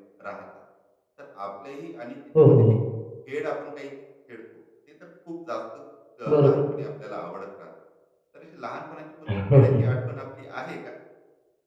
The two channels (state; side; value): identical; both; correlation 1.00